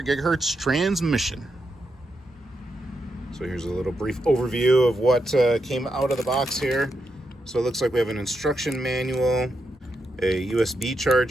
gigahertz transmission. So here's a little brief overview of what came out of the box here. So it looks like we have an instruction manual, a USB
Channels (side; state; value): both; normal; correlation 0.84